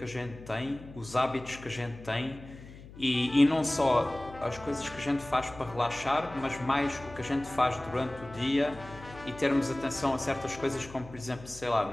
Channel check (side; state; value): left; noise; hum, 17 dB below the sound